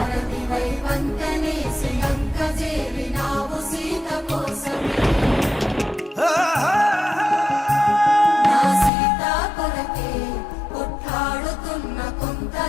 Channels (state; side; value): drops out; right; at 8.9 s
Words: వంతనే శ్రీలంక చేరినావు సీత కోసమే నా సీత కొరకే కొట్లాడుతున్న కొంత